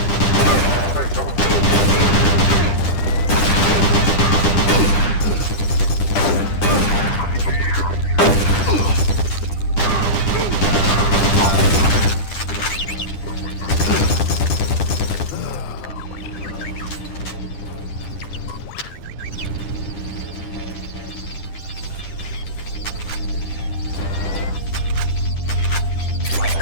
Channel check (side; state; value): right; late; 10 ms